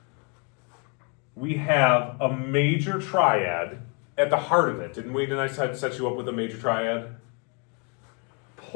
We have a major triad at the heart of it, didn't we? Didn't I set you up with a major triad?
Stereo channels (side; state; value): right; quieter; 35.8 dB